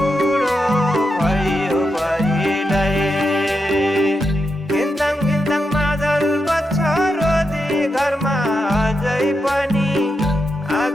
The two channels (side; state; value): both; normal; correlation 0.86